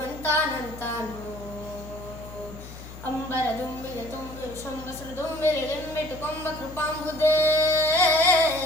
ಅಂಬರ ದುಂಬಿಗೆ ತುಂಬಿ ಶಂಬಸರು ದುಂಬಿರಿ ಲಿಂಬಿಟ್ಟು ಕೊಂಬ ಕೃಪಾಂಬುದೇ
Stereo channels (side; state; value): left; noise; hum, 14 dB below the sound